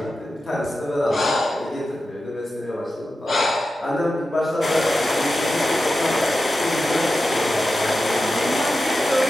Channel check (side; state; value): both; normal; correlation 0.91